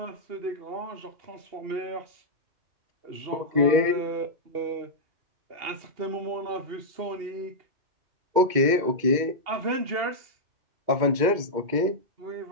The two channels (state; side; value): late; left; 2.1 ms